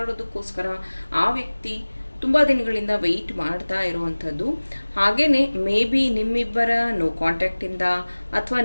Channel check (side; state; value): both; inverted; correlation -1.00